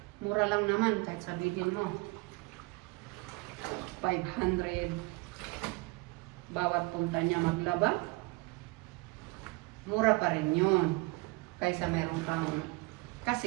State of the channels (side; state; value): left; quieter; 25.1 dB